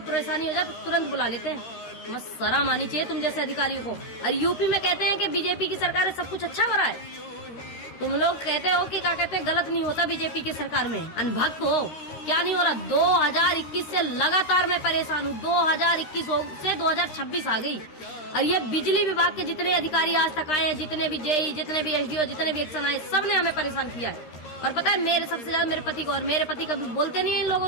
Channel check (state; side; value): late; right; 13 ms